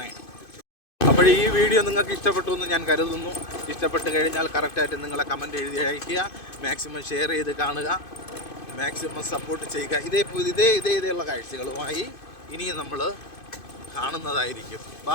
അപ്പോൾ ഈ വീഡിയോ നിങ്ങൾക്ക് ഇഷ്ടപ്പെട്ടു എന്ന് ഞാൻ കരുതുന്നു. ഇഷ്ടപ്പെട്ട് കഴിഞ്ഞാൽ കറക്റ്റായിട്ട് നിങ്ങളെ കമൻറ്റ് എഴുതി അയയ്ക്കുക. മാക്സിമം ഷെയർ ചെയ്ത് കാണുക. മാക്സിമം സപ്പോർട്ട് ചെയ്യുക. ഇതേയുള്ള കാഴ്ചകളുമായി ഇനിയും നമ്മൾ കാണുന്നതായിരിക്കും.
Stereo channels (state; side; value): late; right; 2.5 ms